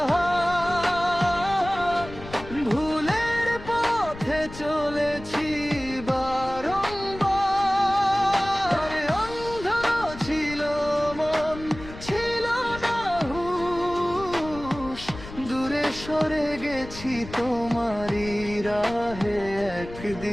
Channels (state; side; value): noise; left; rumble, 14 dB below the sound